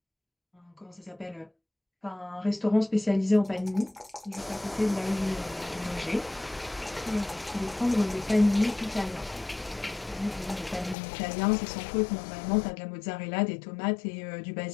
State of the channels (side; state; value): right; drops out; at 11.0 s